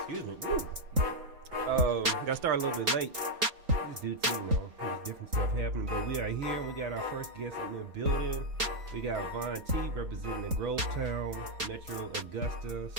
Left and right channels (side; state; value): left; late; 3.8 ms